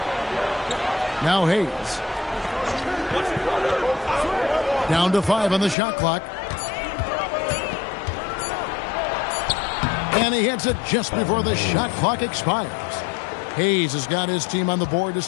Now Hayes. Down to 5 on the shot clock. And he hits it just before the shot clock expires. Hayes has got his team on the board to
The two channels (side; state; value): right; drops out; at 5.8 s